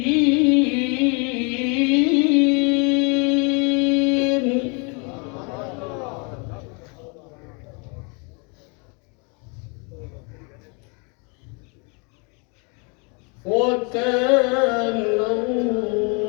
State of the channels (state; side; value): quieter; right; 33.9 dB